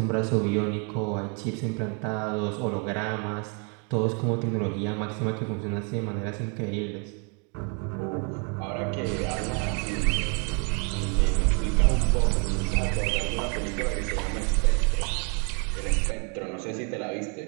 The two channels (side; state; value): left; quieter; 36.9 dB